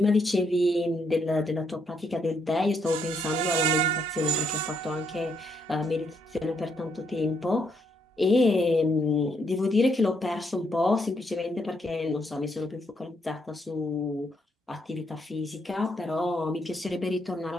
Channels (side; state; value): both; normal; correlation 0.75